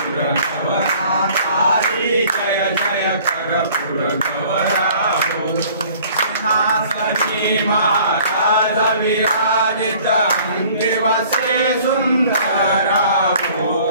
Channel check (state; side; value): inverted; both; correlation -0.53